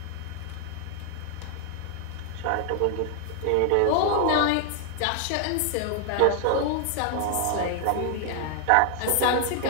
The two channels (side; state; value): both; different; correlation 0.00